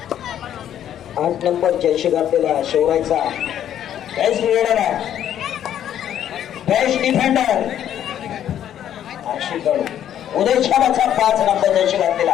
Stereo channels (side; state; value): right; quieter; 10.5 dB